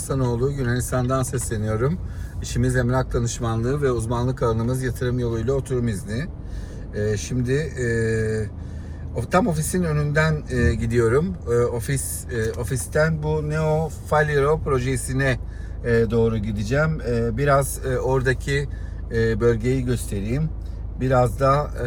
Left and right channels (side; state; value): both; identical; correlation 1.00